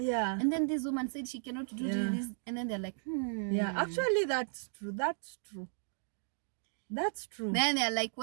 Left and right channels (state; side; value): silent; left; digital silence